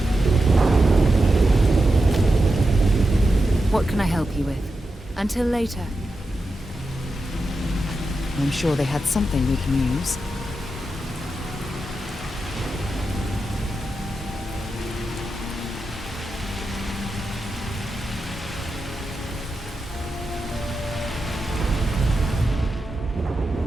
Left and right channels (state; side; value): normal; both; correlation 0.89